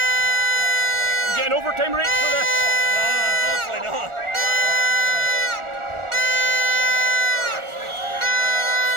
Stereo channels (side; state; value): left; late; 1.4 ms